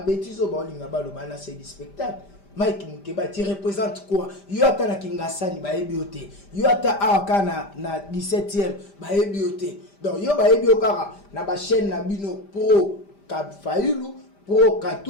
Baolingaba Lobala, c'est du spectacle. Mike Mukeba, tu représentes quoi? Yota na Kingasani, Baebiote. Yota Awaka na 17e, Baebiote. Donc, yo Baebiokara, na ba chaîne na bino pro Fayulu, pro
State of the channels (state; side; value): late; right; 5.0 ms